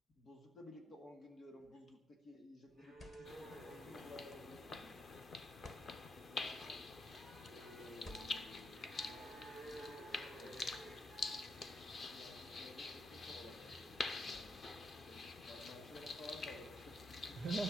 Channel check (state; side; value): normal; both; correlation 0.79